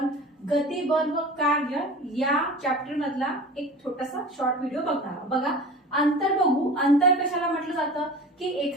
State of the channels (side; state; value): both; normal; correlation 0.37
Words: गती बल व कार्य या चॅप्टर मधला एक छोटासा शॉर्ट व्हिडिओ बघणार. बघा, अंतर बघू. अंतर कशाला म्हटलं जातं की